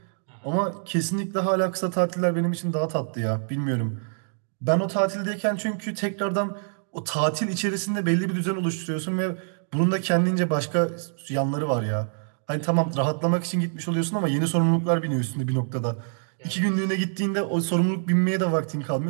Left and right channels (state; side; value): silent; left; digital silence